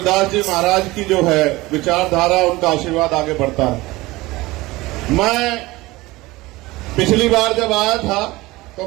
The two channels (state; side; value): quieter; left; 20.1 dB